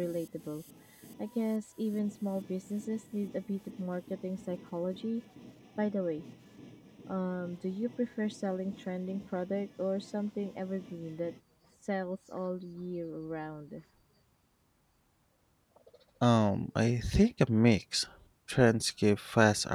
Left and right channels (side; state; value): both; identical; correlation 1.00